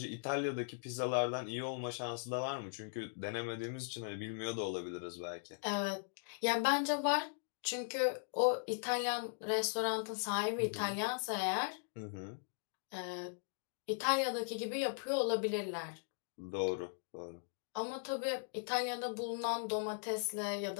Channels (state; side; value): silent; right; digital silence